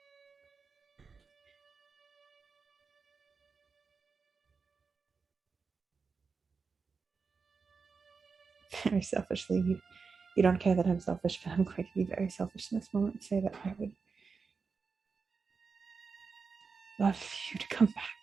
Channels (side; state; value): left; quieter; 5.0 dB